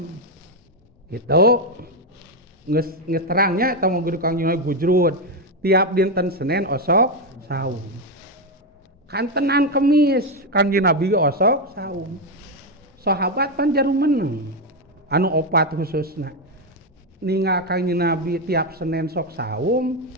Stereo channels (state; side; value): normal; both; correlation 0.06